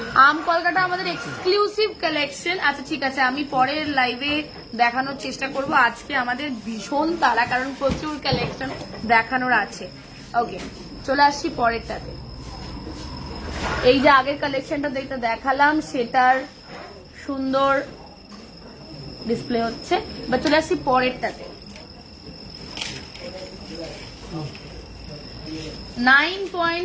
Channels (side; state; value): both; identical; correlation 1.00